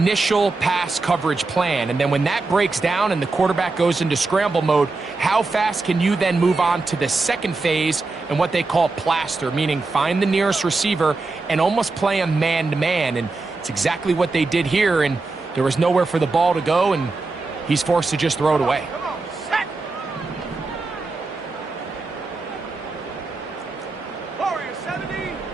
pass coverage plan, and then when that breaks down and the quarterback goes into scramble mode, how fast can you then move on to the second phase and what they call plaster, meaning find the nearest receiver and almost play a man-to-man, and it's exactly what they did here, and There was nowhere for the ball to go, and he's forced to just throw it away. Come on, set. Warrior 70.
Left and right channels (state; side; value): quieter; left; 3.6 dB